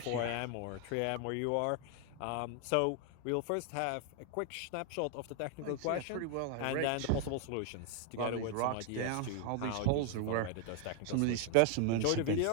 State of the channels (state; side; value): different; both; correlation 0.00